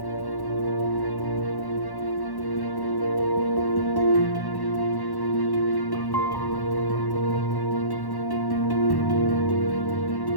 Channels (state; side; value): late; right; 1.1 ms